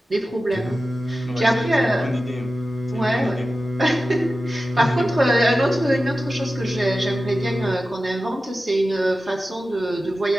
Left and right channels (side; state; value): both; normal; correlation 0.94